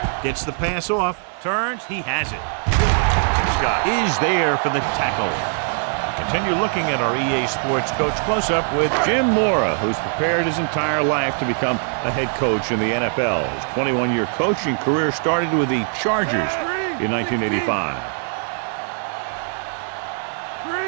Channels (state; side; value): silent; left; 56 dB below the other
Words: Gets the pass off. Turns. He has it. Scott is there for the tackle. Continue looking at our EA Sports Coach Close-Up with Jim Mora, who's prepared his entire life to become a head coach in the NFL. His 21-year coaching career started with the Chargers in 1985.